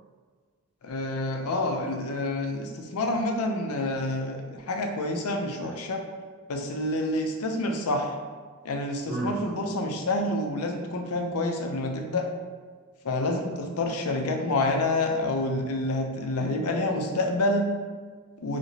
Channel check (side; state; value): both; normal; correlation 0.07